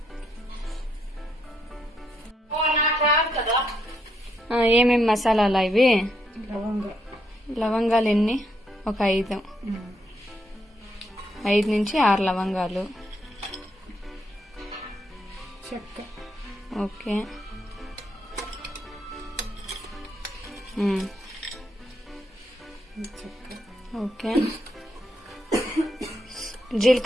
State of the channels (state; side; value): normal; both; correlation 0.77